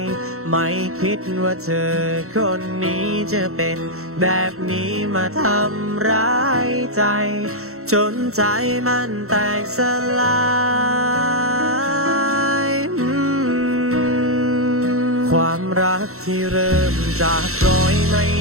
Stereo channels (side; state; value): left; late; 0.63 ms